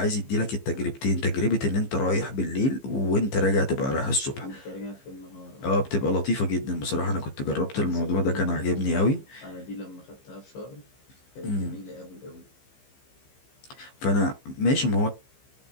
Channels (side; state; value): right; late; 15 ms